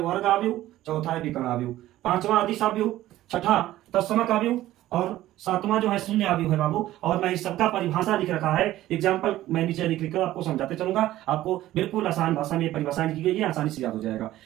आव्यूह, चौथा है विकर्ण आव्यूह, पांचवा अदिश आव्यूह, छठा तत्समक आव्यूह और सातवां जो है शून्य आव्यूह है बाबू। और मैं इस सबका परिभाषा लिख रखा है, एग्जाम्पल मैं नीचे लिख कर आपको समझाते चलूंगा। आपको बिल्कुल आसान भाषा में परिभाषा लिखी गई है, आसानी से याद हो जाएगा।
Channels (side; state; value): left; quieter; 14.8 dB